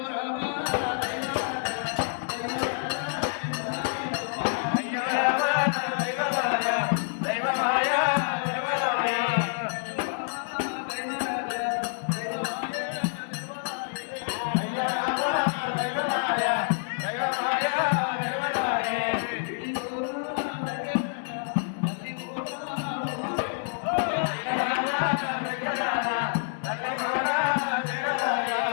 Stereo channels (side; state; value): right; silent; digital silence